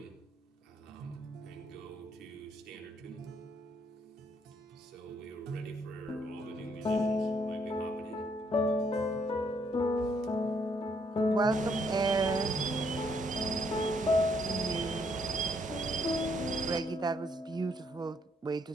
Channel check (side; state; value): both; normal; correlation 0.71